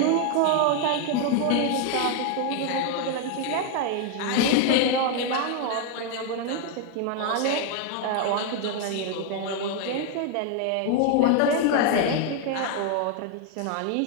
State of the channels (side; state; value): both; different; correlation 0.01